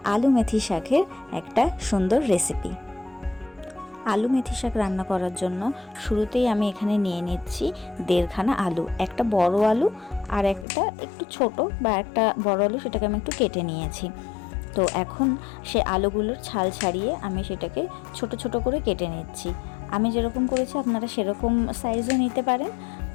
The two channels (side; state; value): right; drops out; at 10.7 s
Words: আলু মেথি শাকের একটা সুন্দর রেসিপি। আলু মেথি শাক রান্না করার জন্য শুরুতেই আমি এখানে নিয়ে নিচ্ছি 1.5 খানা আলু, একটা বড় আলু আর একটা একটু ছোট বা একটা বড় আলু, সেটাকে আমি একটু কেটে নিয়েছি। তো এখন সে আলুগুলোর ছাল ছাড়িয়ে আমি সেটাকে ছোট ছোট করে কেটে নিচ্ছি। আমি যেরকম করেছি আপনারা সেরকম সাইজও নিতে পারেন